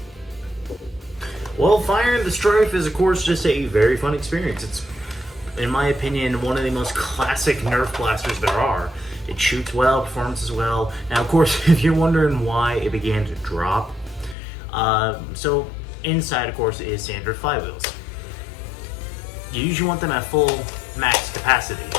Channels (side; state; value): right; drops out; at 14.4 s